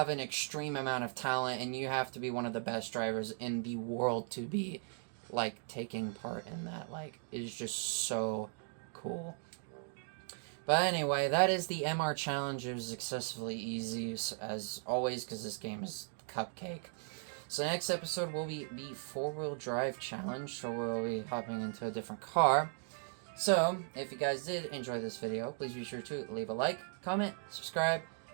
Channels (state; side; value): silent; left; 53 dB below the other